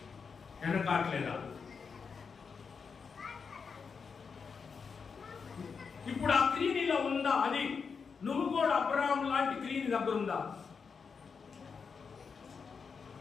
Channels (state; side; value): quieter; right; 5.6 dB